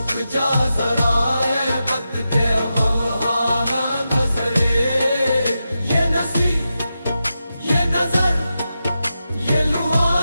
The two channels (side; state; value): both; inverted; correlation -0.90